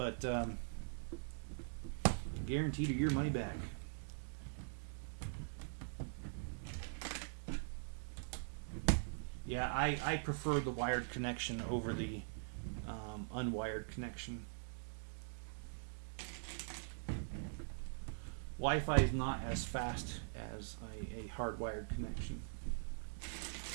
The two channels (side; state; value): left; silent; digital silence